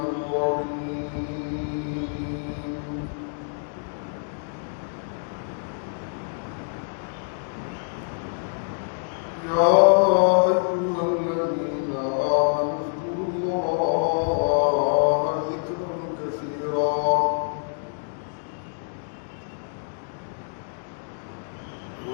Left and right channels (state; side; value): silent; right; digital silence